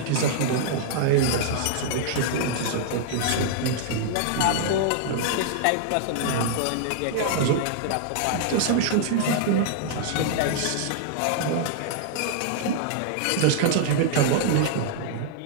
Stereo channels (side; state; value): both; different; correlation -0.01